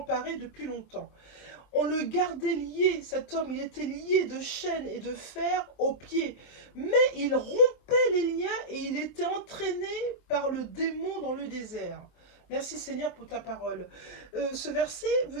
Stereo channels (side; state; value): right; late; 24 ms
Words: depuis longtemps. On le gardait lié, cet homme, il était lié de chaînes et de fer aux pieds, mais il rompait les liens et il était entraîné par le démon dans le désert. » Merci Seigneur pour ta parole. Ce verset veut